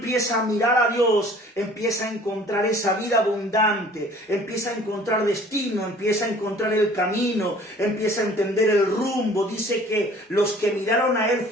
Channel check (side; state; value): both; normal; correlation 0.51